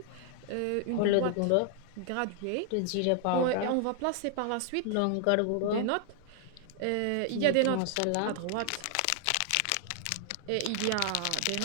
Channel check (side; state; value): both; different; correlation 0.00